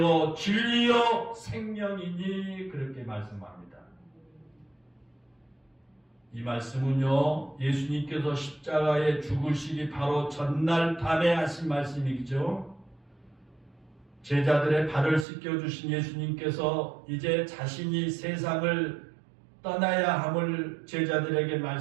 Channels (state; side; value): drops out; left; at 15.2 s